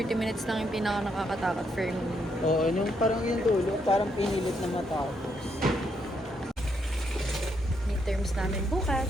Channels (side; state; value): both; normal; correlation 0.76